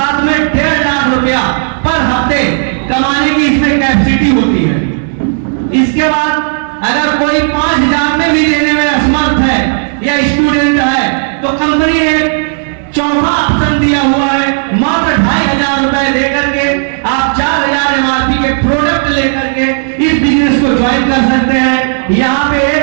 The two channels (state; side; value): silent; left; 71 dB below the other